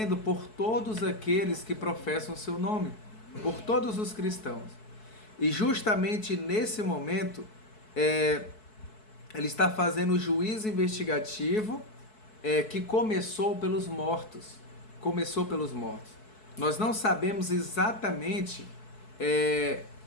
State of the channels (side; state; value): right; late; 4.6 ms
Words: por todos aqueles que professam o seu nome, por todos os cristãos. E justamente nesse momento, ele está fazendo o juízo investigativo que começou pelos mortos. Começou pelos mortos. Nós não sabemos exatamente